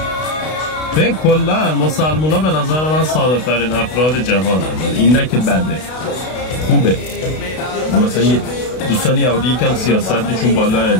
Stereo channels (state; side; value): late; right; 32 ms